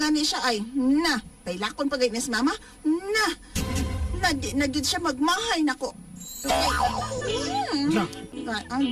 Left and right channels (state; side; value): identical; both; correlation 1.00